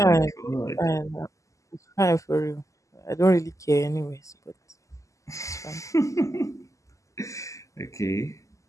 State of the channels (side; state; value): right; late; 0.16 ms